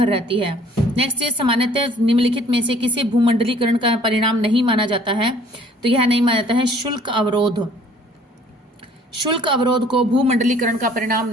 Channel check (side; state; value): both; normal; correlation 0.56